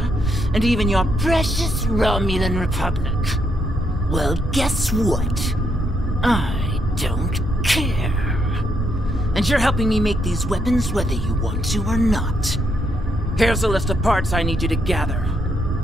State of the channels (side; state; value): both; normal; correlation 0.76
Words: and even your precious Romulan Republic. Well, guess what? I don't care. And you're helping me make these weapons whether you want to or not. Here's a list of parts I need you to gather.